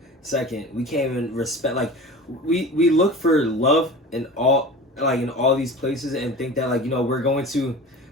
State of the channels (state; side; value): normal; both; correlation 0.35